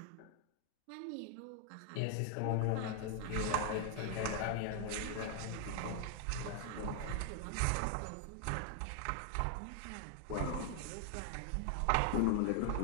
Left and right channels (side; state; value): both; different; correlation 0.00